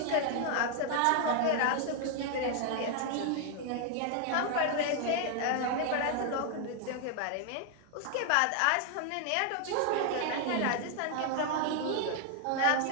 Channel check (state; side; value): different; both; correlation 0.00